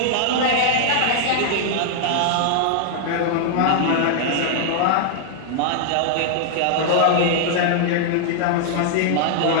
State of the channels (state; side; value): different; both; correlation -0.01